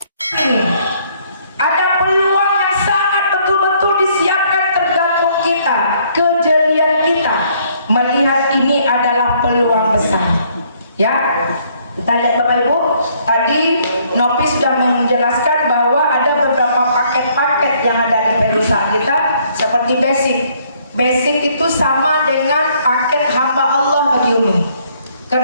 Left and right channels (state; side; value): inverted; both; correlation -0.66